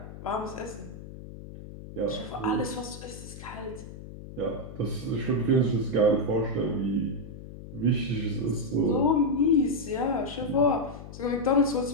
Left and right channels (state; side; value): noise; left; hum, 13 dB below the sound